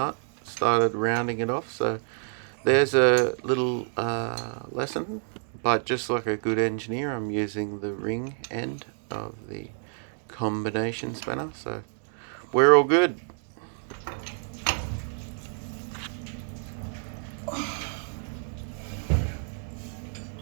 started rounding it off. So there's a little lesson, but just like a good engineer, I'm using the ring end of the combination spanner, so we're all good.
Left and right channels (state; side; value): silent; left; 56 dB below the other